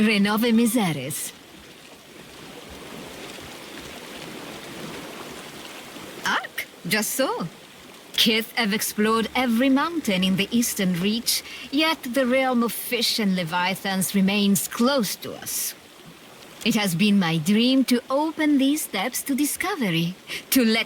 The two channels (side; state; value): both; identical; correlation 1.00